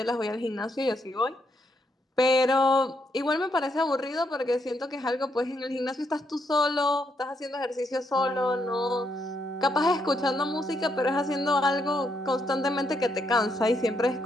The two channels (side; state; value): both; normal; correlation 0.77